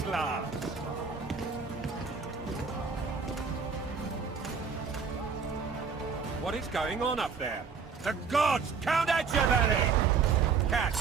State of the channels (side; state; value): left; quieter; 5.5 dB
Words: What is going on up there? The gods count at you, Larry!